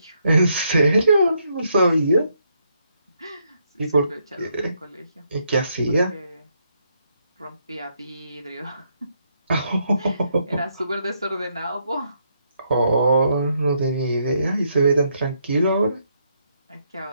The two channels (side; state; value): both; inverted; correlation -0.76